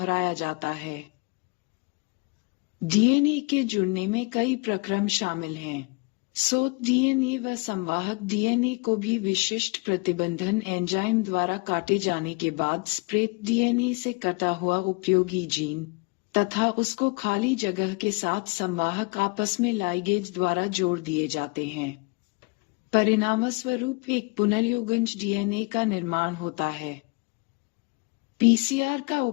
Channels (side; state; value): right; quieter; 29.6 dB